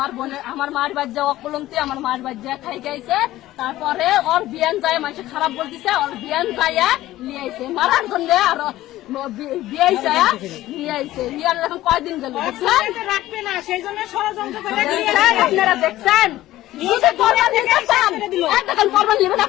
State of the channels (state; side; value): quieter; right; 15.4 dB